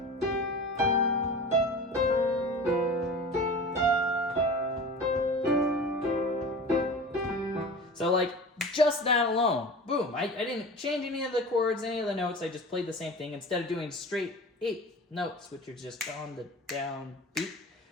So like just that alone, boom, I didn't change any of the chords, any of the notes, I just played the same thing instead of doing straight 8 notes, which are just on the down beat.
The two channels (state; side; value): normal; both; correlation 0.35